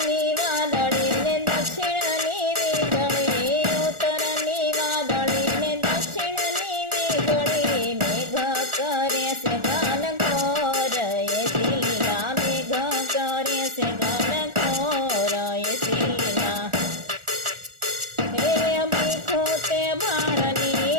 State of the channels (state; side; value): late; left; 1.4 ms